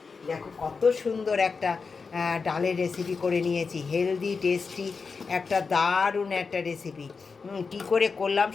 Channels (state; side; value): quieter; right; 4.9 dB